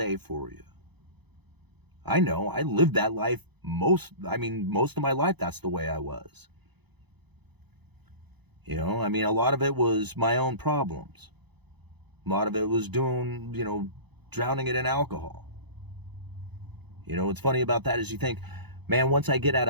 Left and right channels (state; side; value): late; left; 0.99 ms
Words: for you. I know, I lived that life most of my life, that's the way I was. A lot of it was my own problems. A lot of it was drowning it in alcohol. What's funny about that is you think, man, once I get out